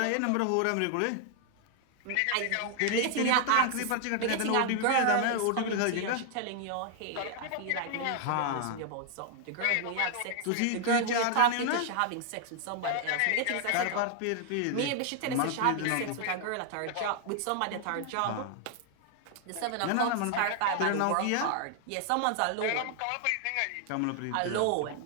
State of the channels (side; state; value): both; different; correlation 0.00